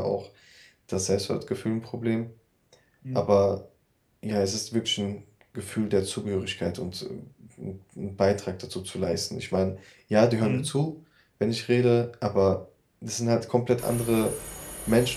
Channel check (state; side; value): identical; both; correlation 1.00